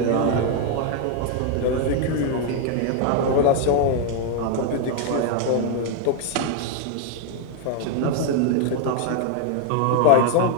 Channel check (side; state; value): both; different; correlation 0.00